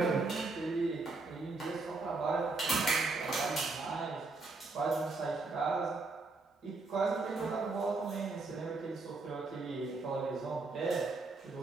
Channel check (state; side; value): quieter; left; 3.6 dB